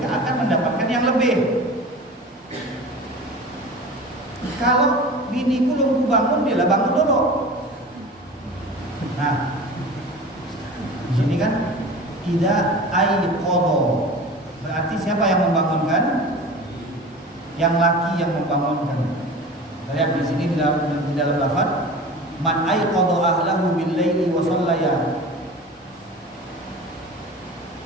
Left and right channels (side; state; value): both; normal; correlation 0.36